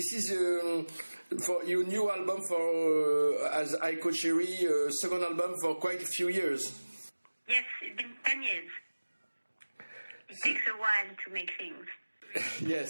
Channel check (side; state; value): both; inverted; correlation -1.00